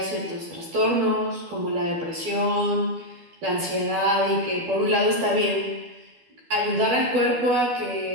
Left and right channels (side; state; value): left; late; 12 ms